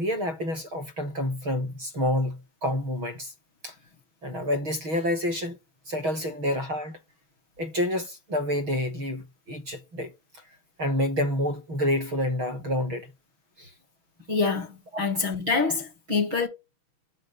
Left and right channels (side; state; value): left; late; 6.1 ms